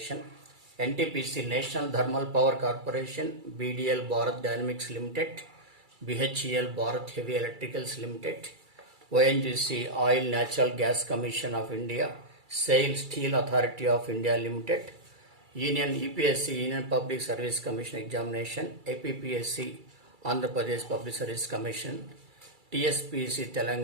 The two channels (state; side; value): late; left; 2.3 ms